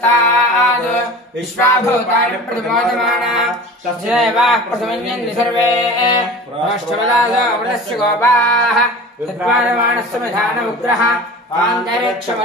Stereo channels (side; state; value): both; normal; correlation 0.37